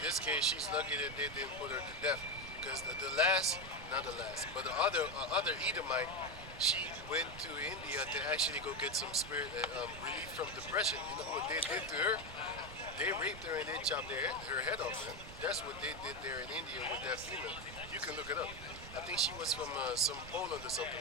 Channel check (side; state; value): right; noise; rumble, 12 dB below the sound